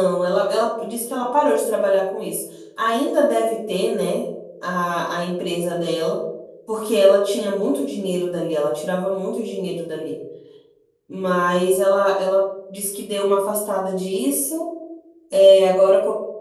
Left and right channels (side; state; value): both; identical; correlation 1.00